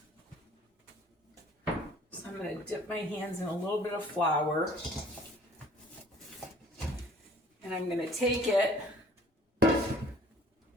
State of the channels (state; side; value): normal; both; correlation 0.53